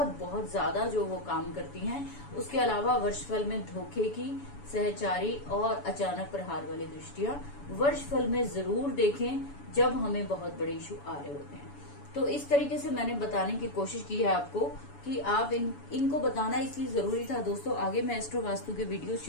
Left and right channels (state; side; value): late; right; 7.0 ms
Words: बहुत ज्यादा जो वो काम करती हैं। उसके अलावा वर्षफल में धोखे की सहचारी और अचानक प्रहार वाली दृष्टियां वर्ष फल में जरूर देखें जब हमें बहुत बड़े इशू आ रहे होते हैं। तो इस तरीके से मैंने बताने की कोशिश की है आपको कि आप इनको बताना इसलिए जरूरी था दोस्तों। आगे मैं एस्ट्रो वास्तु के वीडियो